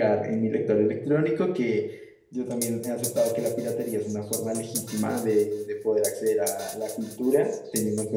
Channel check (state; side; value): identical; both; correlation 1.00